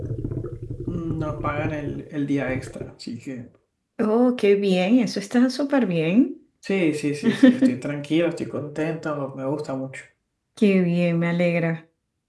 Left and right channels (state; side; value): identical; both; correlation 1.00